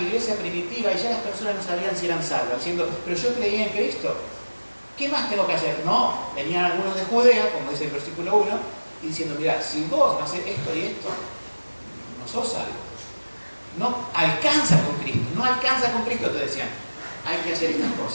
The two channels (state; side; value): inverted; both; correlation -1.00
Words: iglesia primitiva y ya las personas no sabían si eran salvas, diciendo, pero yo creía en Cristo. ¿Qué más tengo que hacer? No, venían algunos de Judea, como dice el versículo 1, y diciendo, mira, si vos no haces esto y esto, no sos salvo. No alcanza con Cristo, no alcanza con Cristo, te decían. Hay que hacer estas